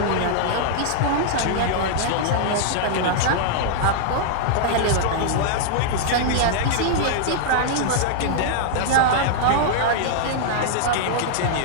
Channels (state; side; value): different; both; correlation -0.01